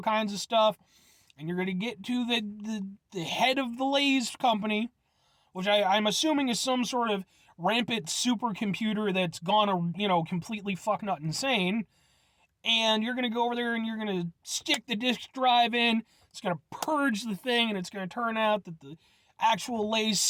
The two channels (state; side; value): identical; both; correlation 1.00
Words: kinds of stuff. And you're going to get to the head of the Lay's company, which I'm assuming is some sort of rampant supercomputer that's gone, completely fucknut insane. And you're going to go over there and you're going to stick the disk drive in. It's going to purge the thing, and it's going to turn out that the actual Lay's